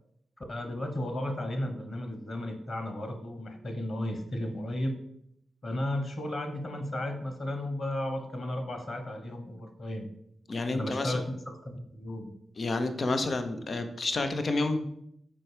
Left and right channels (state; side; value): normal; both; correlation 0.91